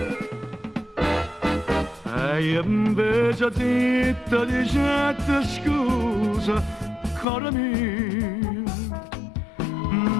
e io invece zitta dicette scusa caro mio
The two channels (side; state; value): right; drops out; at 7.2 s